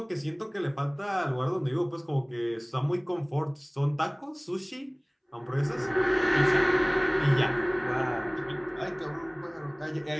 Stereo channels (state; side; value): identical; both; correlation 1.00